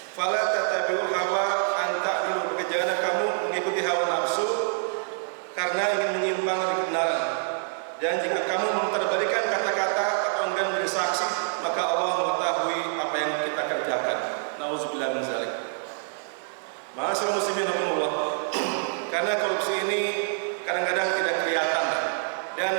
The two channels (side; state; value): left; silent; digital silence